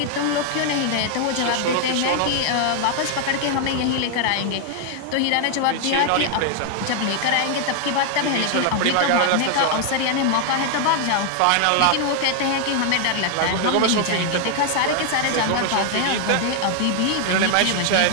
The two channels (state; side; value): different; both; correlation 0.00